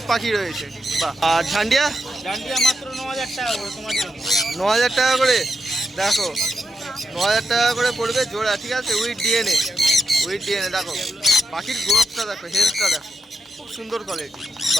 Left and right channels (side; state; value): both; normal; correlation 0.85